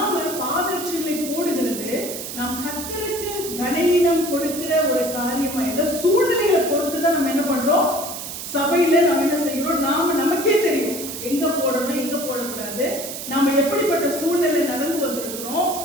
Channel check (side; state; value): right; noise; hiss, 8 dB below the sound